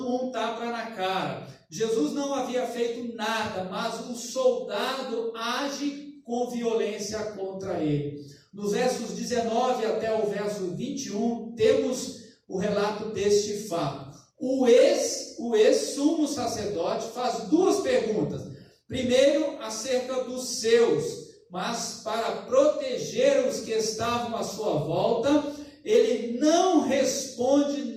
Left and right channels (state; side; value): identical; both; correlation 1.00